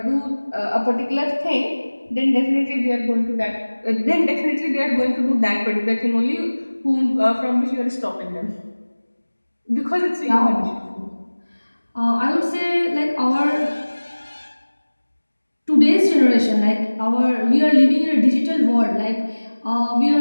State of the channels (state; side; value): inverted; both; correlation -1.00